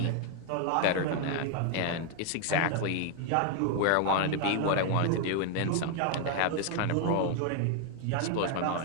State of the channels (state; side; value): different; both; correlation 0.00